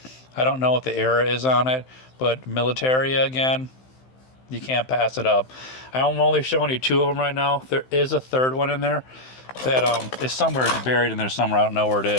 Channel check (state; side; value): late; right; 15 ms